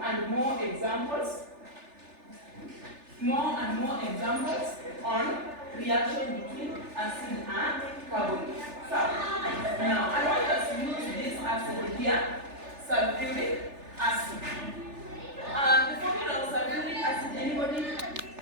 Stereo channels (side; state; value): left; late; 3.4 ms